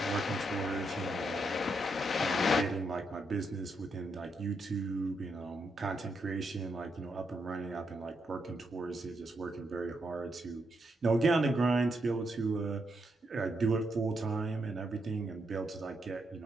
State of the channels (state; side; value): normal; both; correlation 0.80